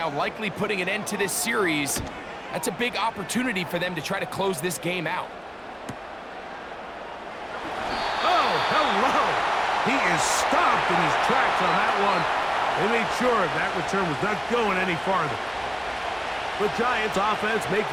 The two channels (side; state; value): both; identical; correlation 1.00